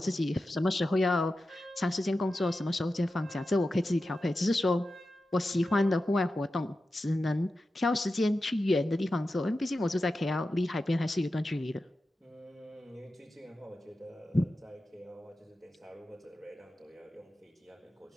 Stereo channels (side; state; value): both; normal; correlation 0.92